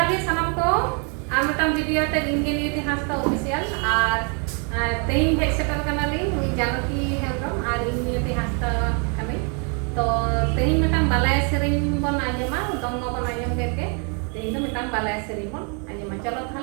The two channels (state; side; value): quieter; left; 37.9 dB